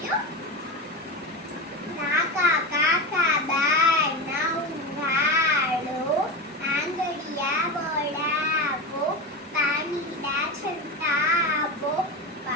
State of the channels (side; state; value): both; normal; correlation 0.22